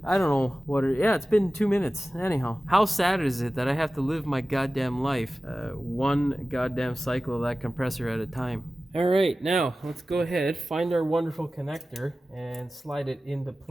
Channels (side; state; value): both; normal; correlation 0.96